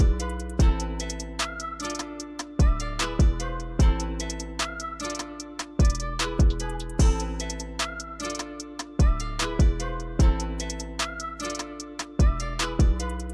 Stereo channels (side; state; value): both; identical; correlation 1.00